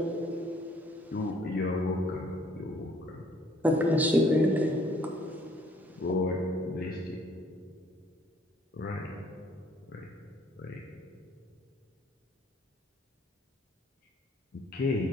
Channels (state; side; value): normal; both; correlation 0.61